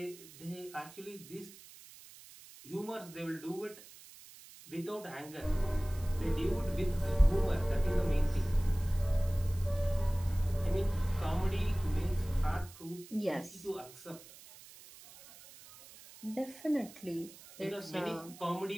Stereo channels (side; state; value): right; noise; hiss, 19 dB below the sound